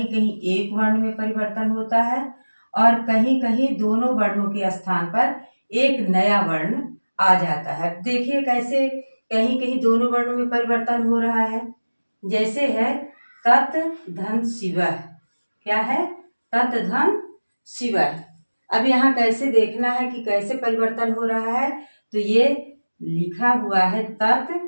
कहीं एक वर्ण में परिवर्तन होता है और कहीं कहीं दोनों वर्णों के स्थान पर एक नया वर्ण आ जाता है। देखिए कैसे कहीं कहीं दोनों वर्णों में परिवर्तन हो रहा है। जैसे है तत् धन शिवः। क्या है? तत् धन शिवः। अब यहाँ कैसे देखना है कि कैसे परिवर्तन हो रहा है। तो ये लिखा हुआ है तत्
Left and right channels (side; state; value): both; inverted; correlation -1.00